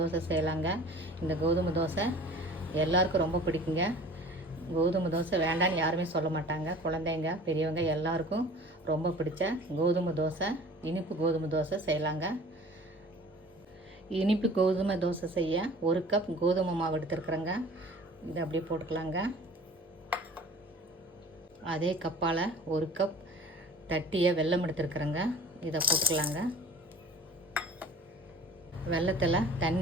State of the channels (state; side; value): normal; both; correlation 0.45